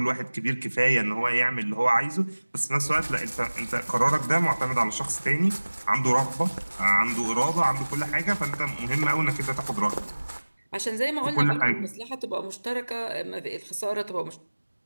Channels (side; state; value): both; inverted; correlation -1.00